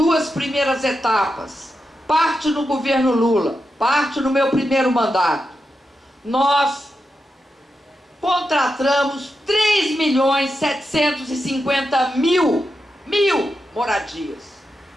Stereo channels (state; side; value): normal; both; correlation 0.88